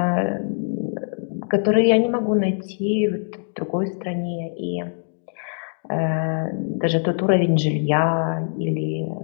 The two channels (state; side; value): silent; right; digital silence